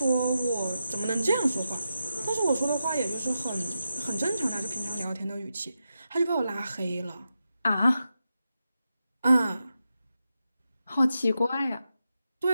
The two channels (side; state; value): both; inverted; correlation -0.88